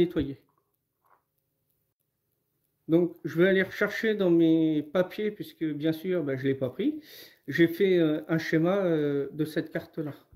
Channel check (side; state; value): both; identical; correlation 1.00